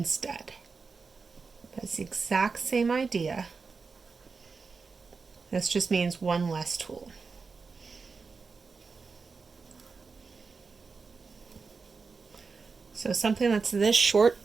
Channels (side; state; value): left; quieter; 4.7 dB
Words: It's the exact same idea. This just means 1 less tool. So something that's this short